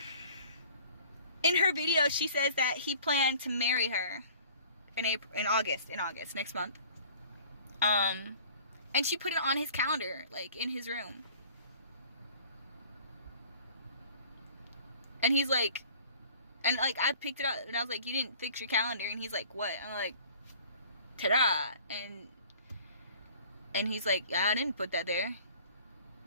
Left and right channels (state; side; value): inverted; both; correlation -0.49